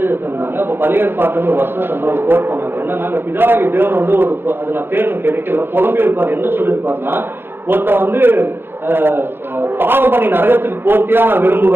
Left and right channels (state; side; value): late; left; 0.10 ms